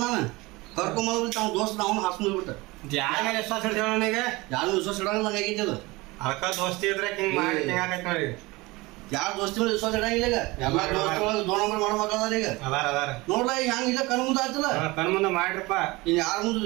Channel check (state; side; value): quieter; left; 22.4 dB